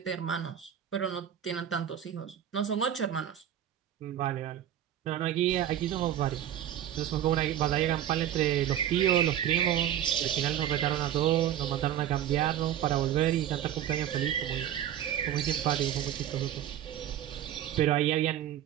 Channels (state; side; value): quieter; left; 10.8 dB